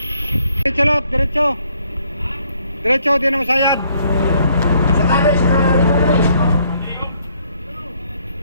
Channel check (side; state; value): both; inverted; correlation -0.67